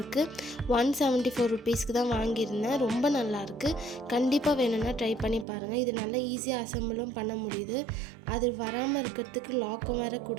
174 ருபீஸ்க்கு தான் வாங்கியிருந்தேன். ரொம்ப நல்லாயிருக்கு. கண்டிப்பாக வேணும்னா ட்ரை பண்ணி பாருங்கள். இது நல்லா ஈஸியாக அசம்பிளும் பண்ண முடியுது. அது வராமல் இருக்கிறதுக்கு லாக்கும் வேறு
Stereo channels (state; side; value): drops out; left; at 5.5 s